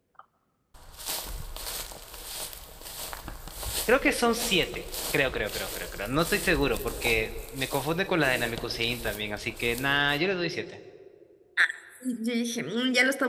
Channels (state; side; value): identical; both; correlation 1.00